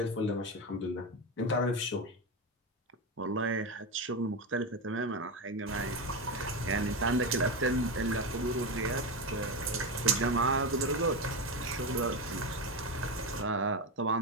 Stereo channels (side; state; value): both; normal; correlation 0.15